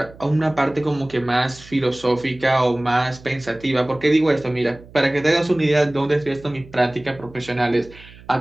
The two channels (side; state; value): right; noise; hum, 21 dB below the sound